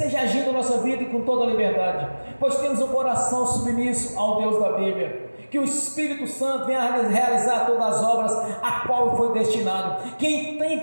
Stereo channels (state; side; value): inverted; both; correlation -1.00